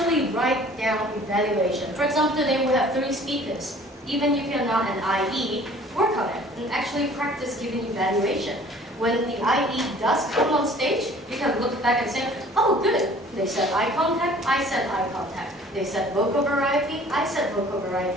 write down evaluation. For example, today we have 3 speakers. Even if you're not an IE, work on it and actually practice giving evaluation. When the IE does come on stage, you can look back and say, oh good, they said eye contact, I said eye contact. They said vocal variety, I said vocal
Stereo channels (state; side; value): normal; both; correlation 0.51